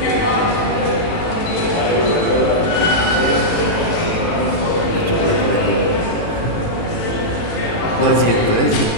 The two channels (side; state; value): right; late; 18 ms